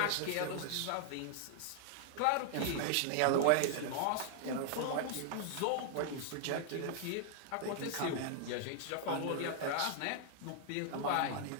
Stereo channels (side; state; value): both; different; correlation 0.00